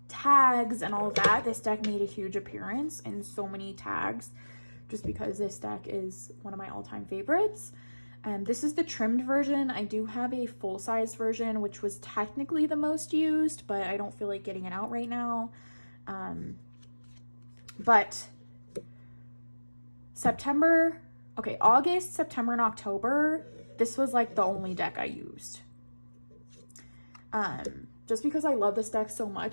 tags and all of that. This deck made a huge appearance in so many tags just because this deck is one of my all-time favorites. This is the trimmed version. I do have a full-size version, which was technically the most used, but I don't feel like getting it out right now. But August, September, and October, this was like the only deck I used. just because I love this deck so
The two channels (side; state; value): both; inverted; correlation -1.00